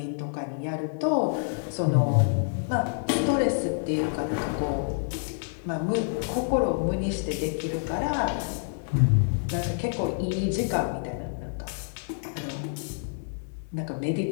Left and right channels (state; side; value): silent; right; digital silence